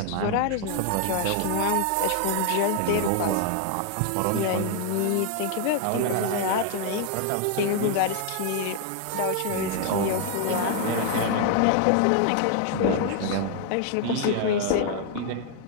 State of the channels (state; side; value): different; both; correlation 0.00